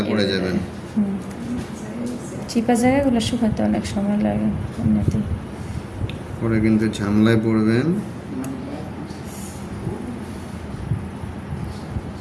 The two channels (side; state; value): both; identical; correlation 1.00